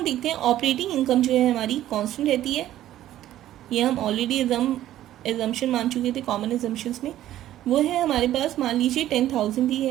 देखते हैं ऑपरेटिंग इनकम जो है हमारी कांस्टेंट रहती है। ये हम ऑलरेडी एजम्पशन मान चुके थे कॉमन एजम्पशंस में। वो है हमारे पास, मान लीजिए 10,000 दी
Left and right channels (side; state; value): left; quieter; 13.2 dB